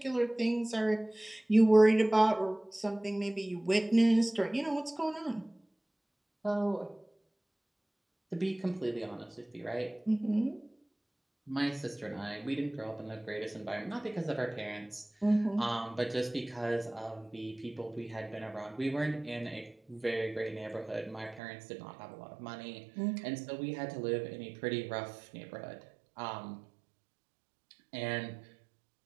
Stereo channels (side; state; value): left; drops out; at 21.4 s